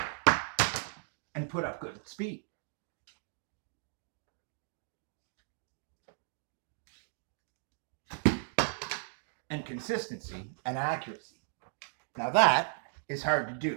and put up good speed. And consistency and accuracy. Now that is hard to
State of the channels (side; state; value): left; silent; digital silence